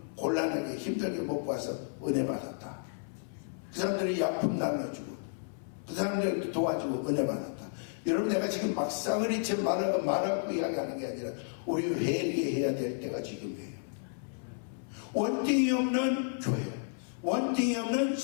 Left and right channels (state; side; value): silent; right; 56 dB below the other